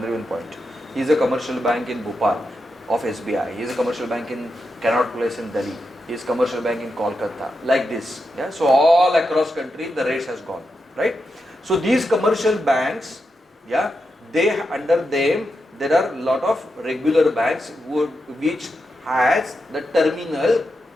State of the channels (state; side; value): normal; both; correlation 0.87